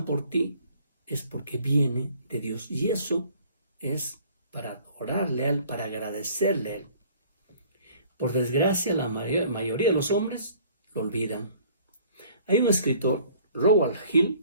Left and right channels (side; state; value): both; inverted; correlation -0.54